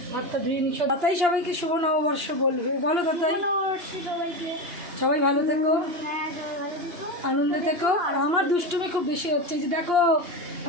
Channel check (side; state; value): left; late; 2.8 ms